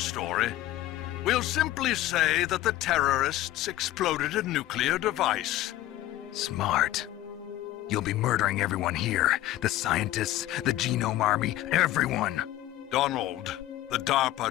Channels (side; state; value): right; quieter; 15.1 dB